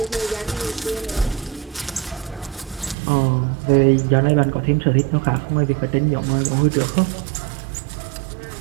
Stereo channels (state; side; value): drops out; left; at 3.0 s